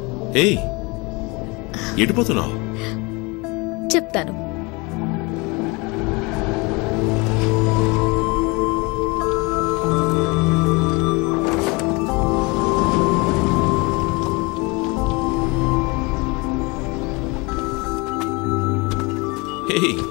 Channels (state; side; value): quieter; right; 27.0 dB